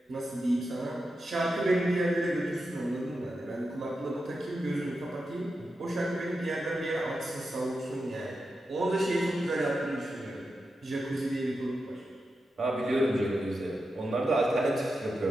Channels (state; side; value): normal; both; correlation 0.89